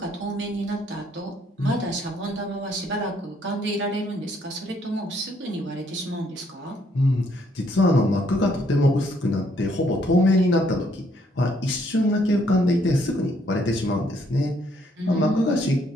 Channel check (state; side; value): normal; both; correlation 0.68